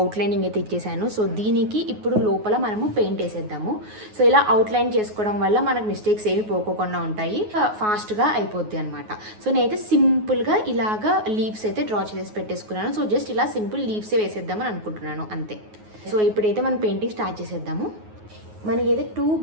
అయితే ఇచ్చేసాను. సో దీనికి ఇప్పుడు లోపల మనము పెయింట్ వేసేద్దాము. సో ఇలా అవుట్లైన్ చేసుకోవడం వల్ల మనకు మిస్టేక్స్ ఏమి పోకోకుండా ఉంటాయి, ఫాస్ట్గా అయిపోద్ది అనమాట. సో నేనైతే సింపుల్గా ఇలాగా లీవ్స్ అయితే డ్రా చేసి పెట్టేసుకున్నాను. సో జస్ట్ ఇలా సింపుల్ లీవ్సే వేసేద్దామని అనుకుంటున్నాను అంతే. సో ఇప్పుడైతే మనం పెయింటింగ్ స్టార్ట్ చేసేద్దాము. మనకైతే 2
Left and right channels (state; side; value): late; left; 9.4 ms